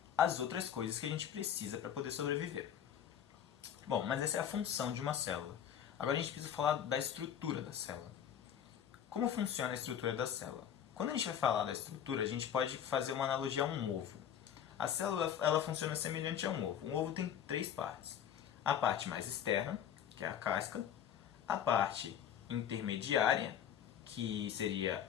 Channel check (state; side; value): quieter; right; 9.3 dB